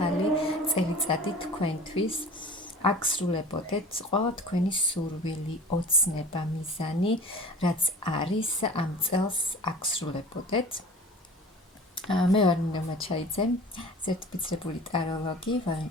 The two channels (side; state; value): both; normal; correlation 0.39